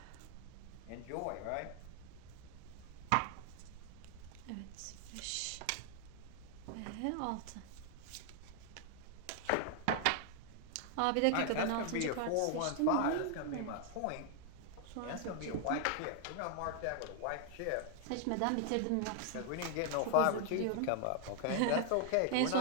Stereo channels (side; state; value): both; different; correlation 0.00